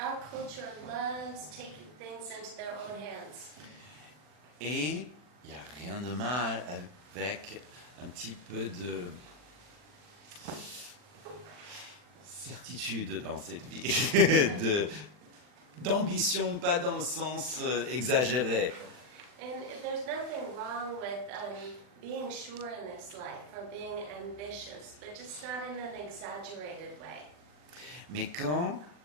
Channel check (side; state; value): left; late; 40 ms